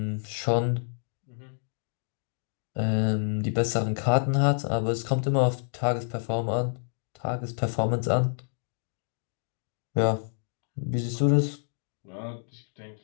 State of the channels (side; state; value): right; silent; digital silence